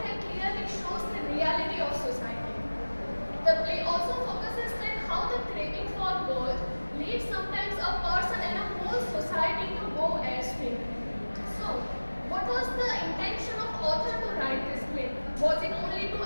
Was it only to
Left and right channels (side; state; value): both; inverted; correlation -1.00